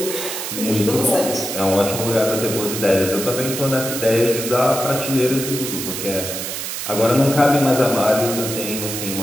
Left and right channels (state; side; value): noise; right; hiss, 5 dB below the sound